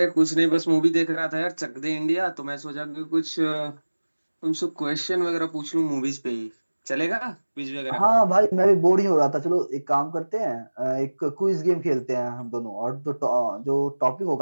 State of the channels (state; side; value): inverted; both; correlation -1.00